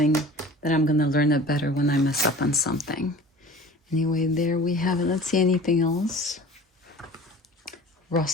that I'm gonna learn it better when I mess up on something. Anyway, there we have it. Let's see anything else.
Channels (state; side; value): normal; both; correlation 0.43